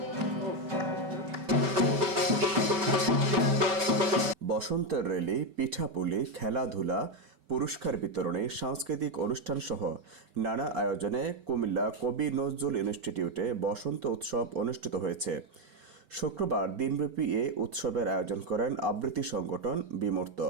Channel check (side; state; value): left; late; 5.2 ms